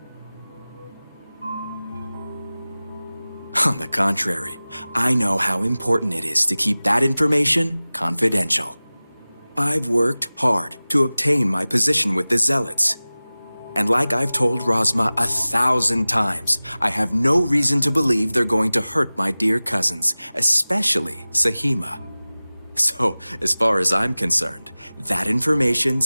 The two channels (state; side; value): inverted; both; correlation -0.98